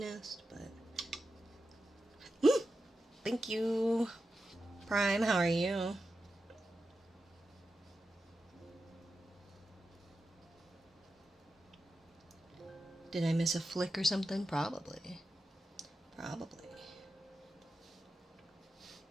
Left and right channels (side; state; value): both; normal; correlation 0.90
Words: but... Thank you, Prime. How are you? Did I miss a flick or something? Probably.